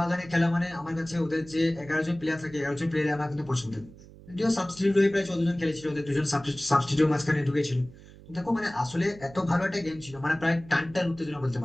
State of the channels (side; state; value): right; noise; hum, 20 dB below the sound